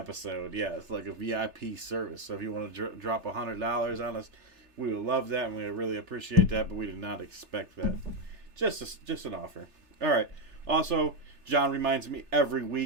Yeah, it's like a VIP service. So if you want to drop $100 on us, we would love that and we would really appreciate that, but we did not expect that. Just an offer. All right. Also, John reminds me every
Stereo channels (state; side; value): late; left; 3.3 ms